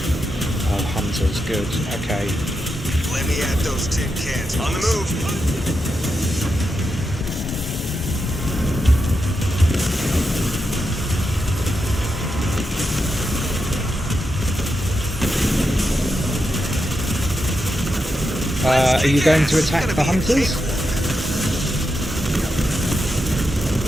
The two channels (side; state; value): both; normal; correlation 0.86